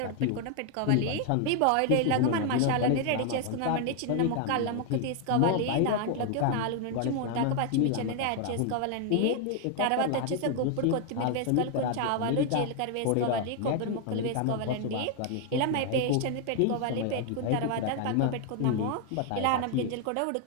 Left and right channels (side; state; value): both; different; correlation 0.00